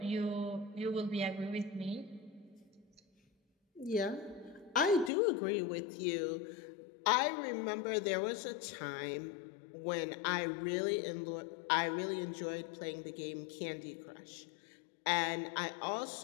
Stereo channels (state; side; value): drops out; right; at 5.1 s